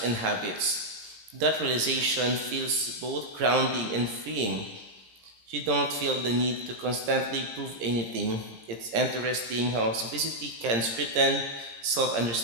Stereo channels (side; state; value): left; late; 17 ms